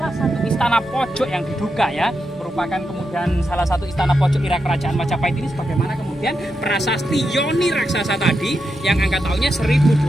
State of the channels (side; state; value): both; normal; correlation 0.86